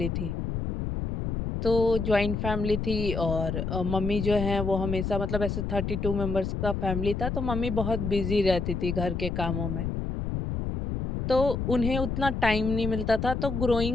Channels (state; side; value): noise; left; rumble, 3 dB below the sound